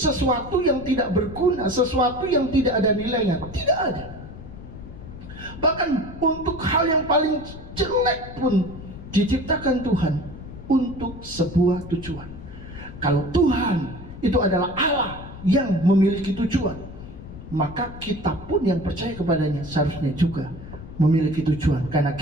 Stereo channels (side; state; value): left; noise; rumble, 13 dB below the sound